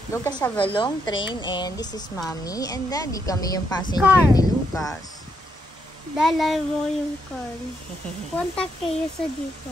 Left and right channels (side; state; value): both; normal; correlation 0.77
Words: Lucas have a long train and this is Mommy and Daddy. Kami yung passenger Car. ni Lucas. Dala mo yung car. Punta kayo sa